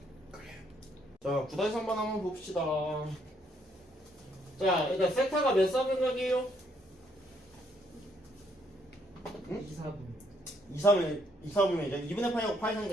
그래요. 자, 9-3번 한번 봅시다. 자, 일단 세타가 몇 사분각이에요? 응? 2, 4분면이죠. 2분의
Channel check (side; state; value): both; normal; correlation 0.70